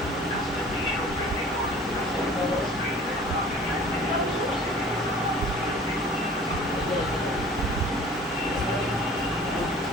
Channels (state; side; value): normal; both; correlation 0.47